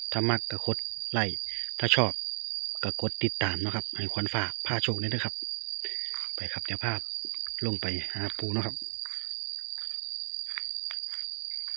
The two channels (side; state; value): left; silent; digital silence